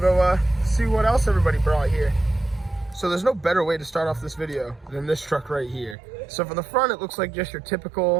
see what else everybody brought here. So there's no better way to start off this video than this truck right here. So for the front, it looks like just your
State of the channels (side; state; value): left; drops out; at 6.0 s